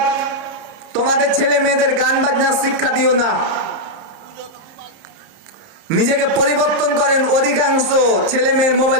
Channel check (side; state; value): left; late; 30 ms